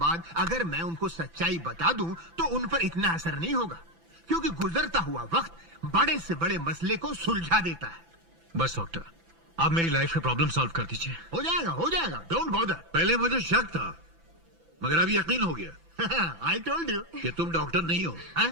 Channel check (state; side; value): late; left; 6.0 ms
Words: अगर मैं उनको सच्चाई बता दूं तो उन पर इतना असर नहीं होगा, क्योंकि गुजरता हुआ वक्त बड़े से बड़े मसले को सुलझा देता है। बस डॉक्टर, आप मेरी लाइफ का प्रॉब्लम सॉल्व कर दीजिए। हो जाएगा, डोंट बॉदर। पहले मुझे शक था, मगर अब यकीन हो गया। आई टोल्ड यू कि तुम डॉक्टर नहीं हो। हाँ?